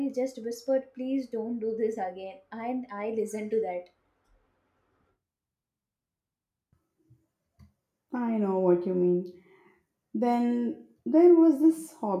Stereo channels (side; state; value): both; identical; correlation 1.00